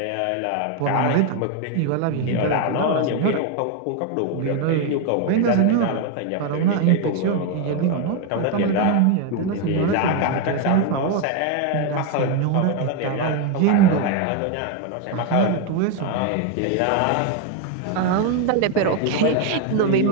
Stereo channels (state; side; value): different; both; correlation 0.01